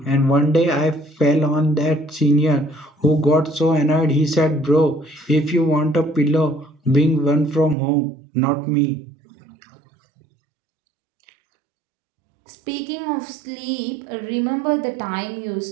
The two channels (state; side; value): drops out; left; at 7.8 s